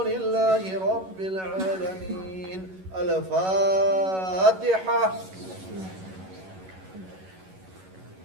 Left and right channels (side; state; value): left; late; 11 ms